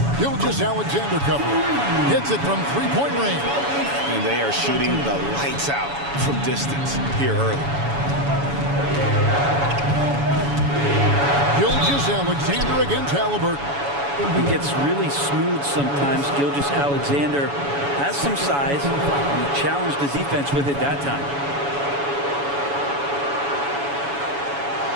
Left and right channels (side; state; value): left; late; 7.1 ms